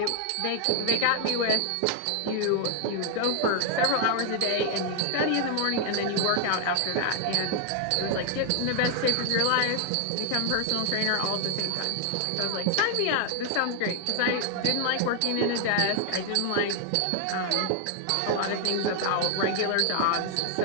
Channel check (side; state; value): both; different; correlation 0.00